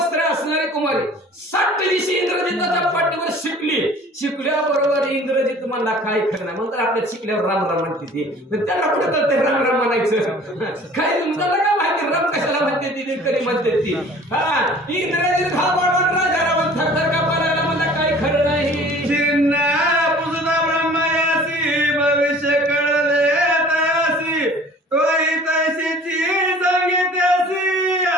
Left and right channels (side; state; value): both; normal; correlation 0.48